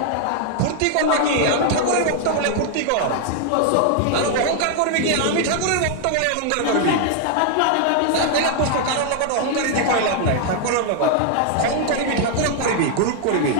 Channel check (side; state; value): both; different; correlation 0.00